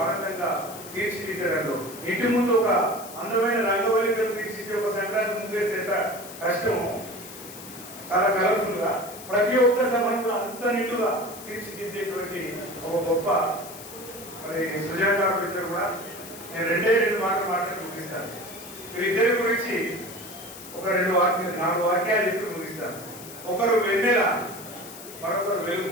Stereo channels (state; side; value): noise; left; hiss, 15 dB below the sound